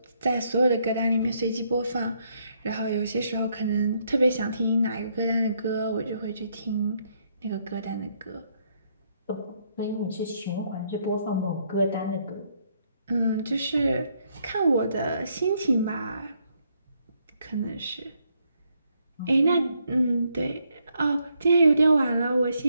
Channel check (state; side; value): inverted; both; correlation -0.74